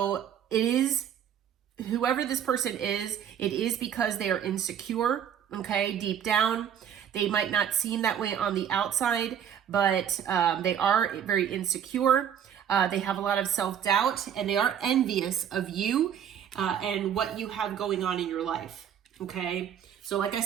it is, whoever this person is, it is because they are insecure, okay, deep down. They might not seem that way on the outside, but they are very insecure. They have a lot of self-doubt, and they are envious of you and what you have going on in your life, okay? So like I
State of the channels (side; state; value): left; quieter; 9.1 dB